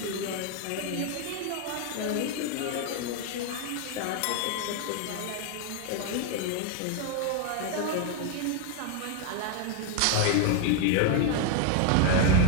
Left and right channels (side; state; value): both; different; correlation 0.01